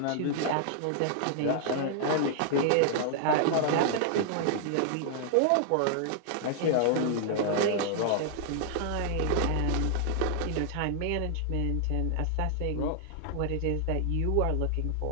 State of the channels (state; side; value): different; both; correlation -0.01